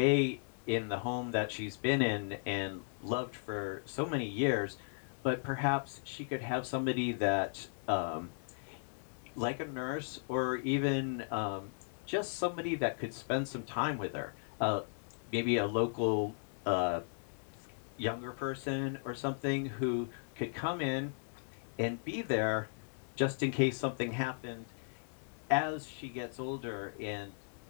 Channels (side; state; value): right; silent; digital silence